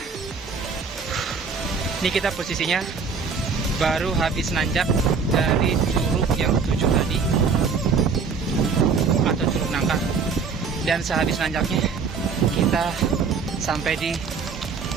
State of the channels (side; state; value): left; quieter; 5.3 dB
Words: ini kita posisinya baru habis nanjak dari curug yang 7 tadi, atau curug nangka. Dan sehabis nanjaknya kita sampai di